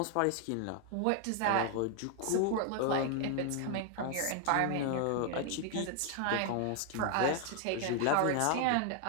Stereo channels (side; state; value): both; different; correlation 0.00